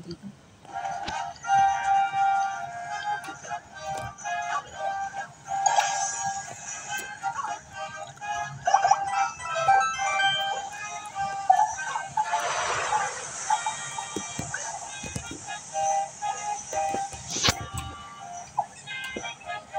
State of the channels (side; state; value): both; identical; correlation 1.00